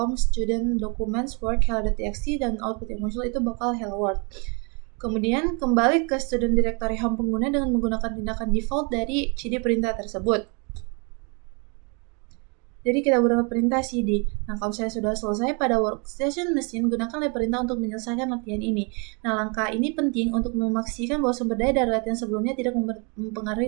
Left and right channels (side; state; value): left; quieter; 33.5 dB